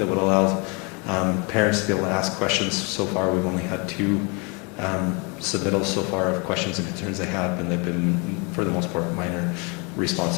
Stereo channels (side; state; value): right; quieter; 31.8 dB